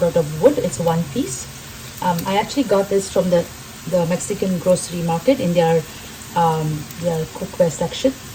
out of wood. It's 1 piece. I actually got this from the Mexican grocery market in their cookware section.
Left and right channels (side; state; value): both; identical; correlation 1.00